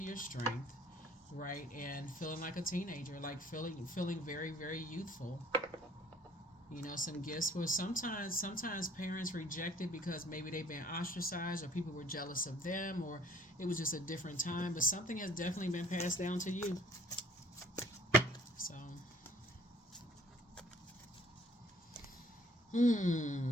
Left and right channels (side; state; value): both; normal; correlation 0.56